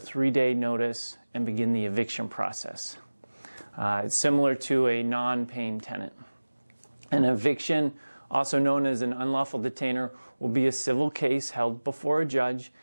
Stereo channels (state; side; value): inverted; both; correlation -1.00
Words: notice and begin the eviction process. It's similar to a non-paying tenant. An eviction, also known as an unlawful detainer, will be a civil case held before a judge,